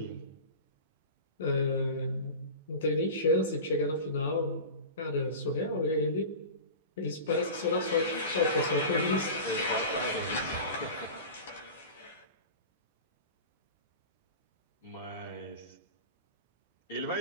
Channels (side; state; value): both; inverted; correlation -0.32